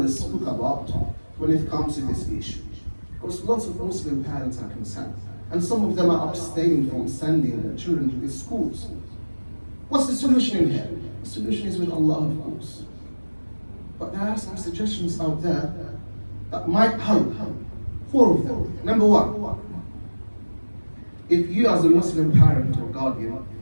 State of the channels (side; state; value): both; inverted; correlation -1.00